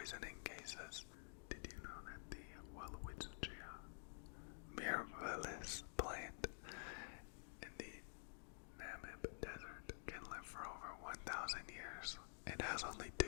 cases. Did you know that the Welwitschia mirabilis plant in the Namib Desert can live for over 1,000 years? It has only 2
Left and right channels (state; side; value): silent; right; digital silence